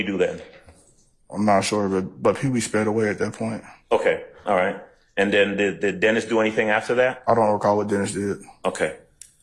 do then? I'm not sure, but Pee Wee sped away at that point. Okay. All right. And then did Dennis do anything after that? I don't recall what Dennis did. Okay.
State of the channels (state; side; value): identical; both; correlation 1.00